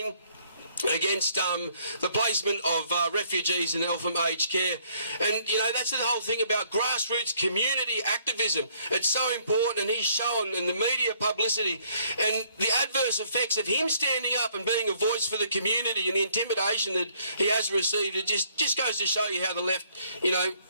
against the placement of refugees in Eltham aged care. And, you know, that's the whole thing about grassroots community activism. It's so important, and he's shown in the media publicity and the adverse effects of him standing up and being a voice for the community and the intimidation that he has received. It just goes to show you how the left, you know,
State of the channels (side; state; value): both; inverted; correlation -0.65